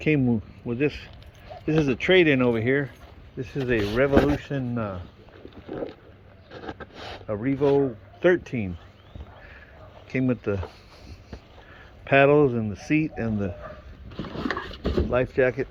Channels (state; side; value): identical; both; correlation 1.00